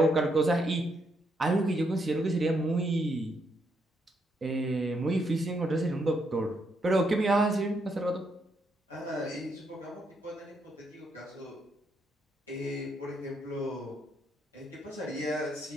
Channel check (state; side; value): normal; both; correlation 0.77